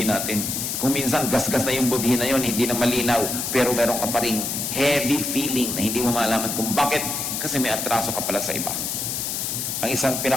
natin. Kung minsan gasgas na yung budhi na yun, hindi na malinaw, pero meron ka pa ring heavy feeling na hindi mo malaman kung bakit, kasi may atraso ka pala sa iba. Ang isang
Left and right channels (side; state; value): left; noise; hiss, 2 dB below the sound